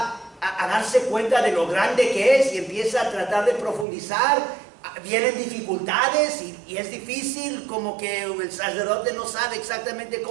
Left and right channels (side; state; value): left; drops out; at 3.9 s